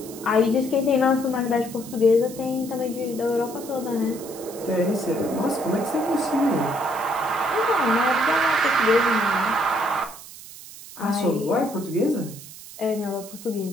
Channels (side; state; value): right; noise; hiss, 16 dB below the sound